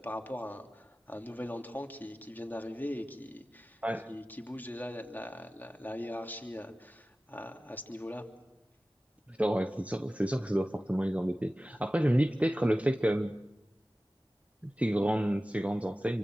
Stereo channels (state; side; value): normal; both; correlation 0.96